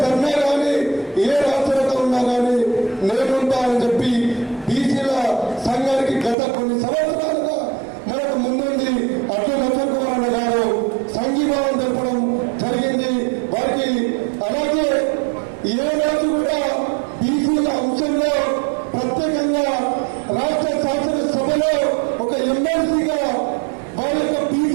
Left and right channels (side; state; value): left; drops out; at 6.4 s